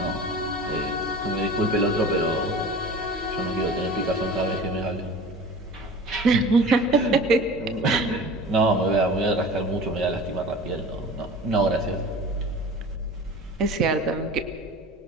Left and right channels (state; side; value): normal; both; correlation 0.38